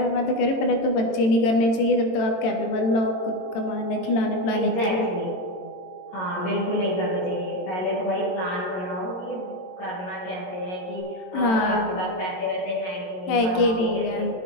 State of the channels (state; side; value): late; right; 22 ms